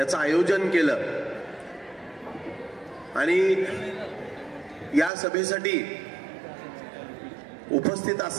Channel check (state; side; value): drops out; left; at 5.1 s